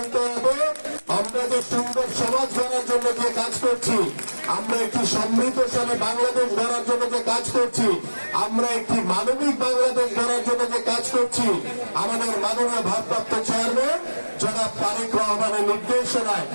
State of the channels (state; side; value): inverted; both; correlation -1.00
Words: হবে। আমরা যে সুন্দর সমাজ গড়ার জন্য যে কাজ করছি, আমরা একটি সমৃদ্ধশালী বাংলাদেশ গড়ার জন্য যে কাজ করছি, আমরা একটি মানবিক বাংলাদেশ গড়ার জন্য যে কাজ করছি, আমাদের মাননীয় ভারপ্রাপ্ত চেয়ারম্যান জনাব তারেক রহমানের নির্দেশনায়